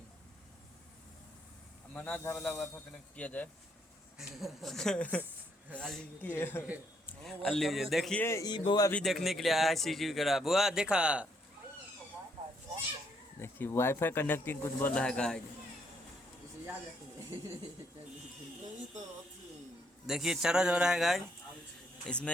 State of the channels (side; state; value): both; normal; correlation 0.72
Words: मना था वाला वाईफाई कनेक्ट किया जाए। अल्ली देखिए ई बुआ भी देखने के लिए आया है CCTV करा। बुआ देखा, देखिए वाईफाई कनेक्टिंग कुछ बोल रहा है गाइस। इसे याद रखिए। देखिए चार्ज हो रहा है गाइस।